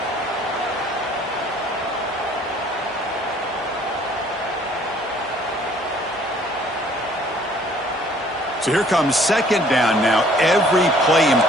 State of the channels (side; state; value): both; normal; correlation 0.57